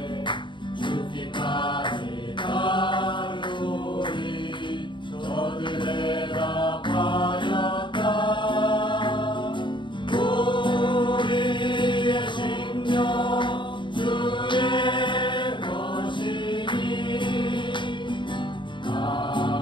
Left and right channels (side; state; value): right; late; 0.23 ms